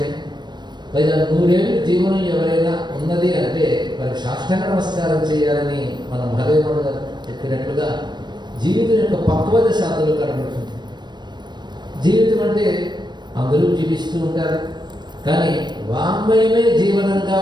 పైగా 100 ఏళ్ళు జీవనం ఎవరైనా ఉన్నది అంటే వారికి సాష్టాంగ నమస్కారం చేయాలని మన మహదేవుడు గారు చెప్పినట్లుగా జీవితం యొక్క పక్వత శాతంలో కనబడుతుంది. జీవితం అంటే అందరూ జీవిస్తూ ఉంటారు, కానీ వాంగ్మయమే జీవనంగా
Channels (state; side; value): late; left; 0.21 ms